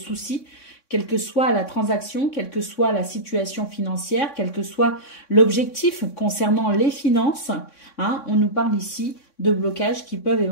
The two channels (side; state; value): right; late; 3.6 ms